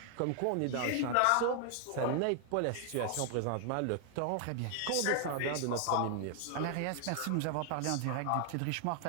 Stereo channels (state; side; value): different; both; correlation 0.00